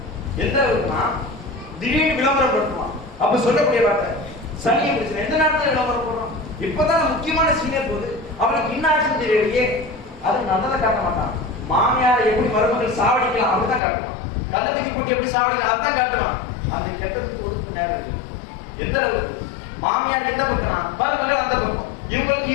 எந்த அளவுக்குனா திடீர்னு விளம்பரம் பண்ணுவான். அப்ப சொல்லக்கூடிய வார்த்தை சனியை பிரச்சனை எந்த நேரத்துல விளம்பரம் போடுறோம்? இப்பதான் முக்கியமான சீனியர் போது அவனுக்கு இன்னாக்ஷன் தெரியலையே, அது நல்லதை காட்ட மாட்டான். மாமியார் எப்படி மருமகள் சாவடிக்கலாம் அப்படிதான் காட்டுவான். கள்ளத்துக்கு கூட்டி எப்படி சாவடிக்கலாம் அதுதான் காட்டுவான். அந்த கெட்டத்துக்கு ஒதுக்கு நேரம் இருக்கு. எந்த அளவுக்கு மாமியார் எந்த பக்கம்னா மருமகள் அந்த பக்கம், இவங்களுக்கு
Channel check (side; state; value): right; drops out; at 13.8 s